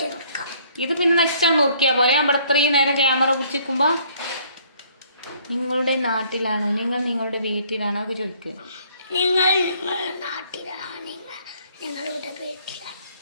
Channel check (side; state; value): both; inverted; correlation -0.61